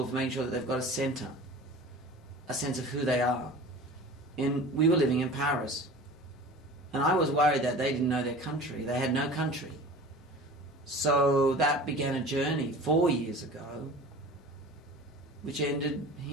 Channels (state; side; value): normal; both; correlation 0.39